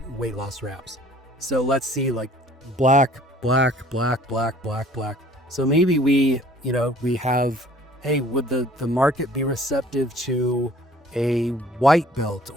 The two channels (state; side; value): normal; both; correlation 0.54